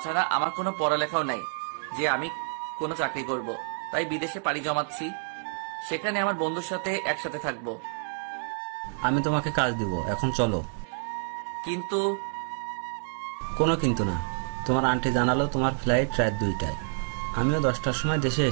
আমার কোনো পড়ালেখাও নাই যে আমি কোনো চাকরি করব, তাই বিদেশে পাড়ি জমাচ্ছি। সেখানে আমার বন্ধুর সাথে একসাথে থাকবো। আমি তোমাকে কাজ দিব, এখন চলো। কিন্তু কোনো কিন্তু না। তোমার আন্টি জানালো তোমার ফ্লাইট রাত 2টায়। আমিও 10টার সময় দেশে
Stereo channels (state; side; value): silent; left; digital silence